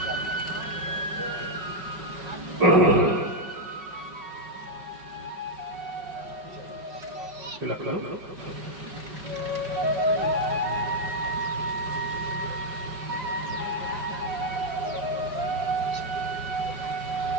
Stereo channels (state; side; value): late; left; 5.4 ms